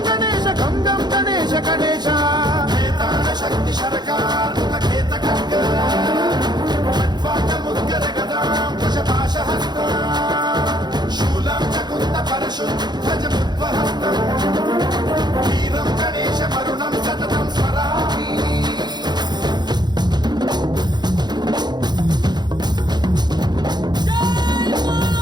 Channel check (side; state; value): left; late; 0.21 ms